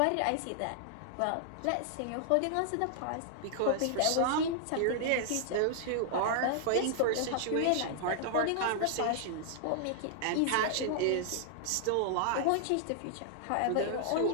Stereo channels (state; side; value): different; both; correlation -0.01